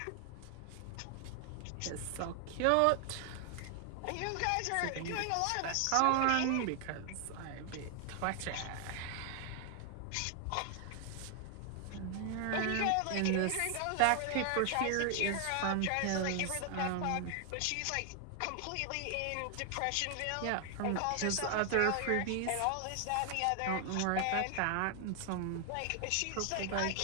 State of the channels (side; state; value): both; different; correlation 0.00